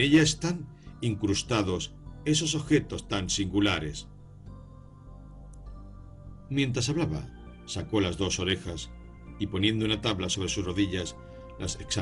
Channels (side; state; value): both; identical; correlation 1.00